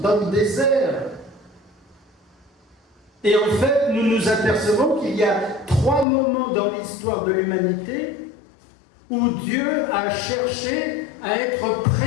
le désert. Et en fait, nous nous apercevons qu'il y a 3 moments dans l'histoire de l'humanité où Dieu a cherché à être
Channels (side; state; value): right; drops out; at 6.1 s